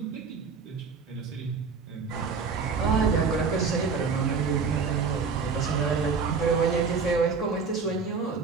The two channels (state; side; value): quieter; left; 5.2 dB